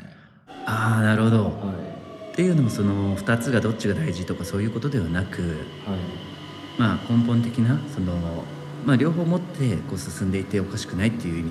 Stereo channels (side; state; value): both; identical; correlation 1.00